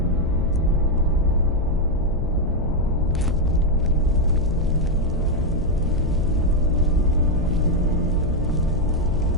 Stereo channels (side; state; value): left; noise; hum, 10 dB below the sound